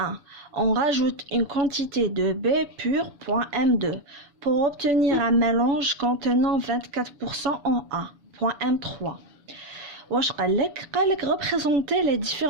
On rajoute une quantité de B pur, point M2, pour obtenir un mélange contenant 24% en A. Point M3. Représenter les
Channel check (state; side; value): late; left; 7.0 ms